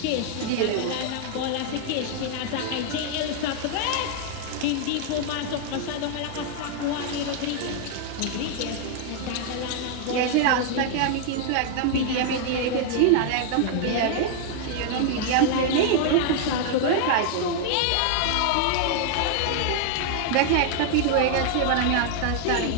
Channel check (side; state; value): both; different; correlation 0.00